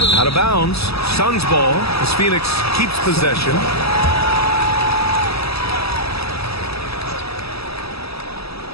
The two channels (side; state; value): right; late; 0.78 ms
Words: Out of bounds. Suns ball as Phoenix keeps possession.